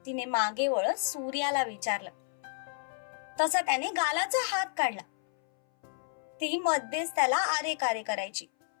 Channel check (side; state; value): right; silent; 57 dB below the other